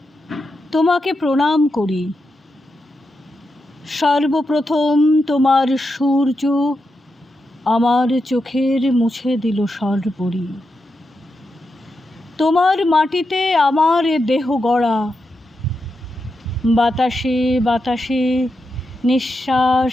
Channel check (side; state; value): both; normal; correlation 0.87